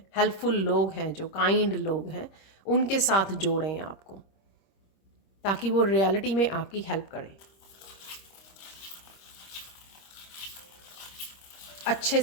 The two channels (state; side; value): late; right; 26 ms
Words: हेल्पफुल लोग हैं, जो काइंड लोग हैं, उनके साथ जोड़ें आपको, ताकि वो रियलिटी में आपकी हेल्प करें, अच्छे